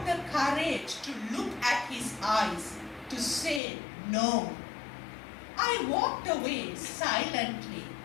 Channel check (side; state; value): right; drops out; at 3.6 s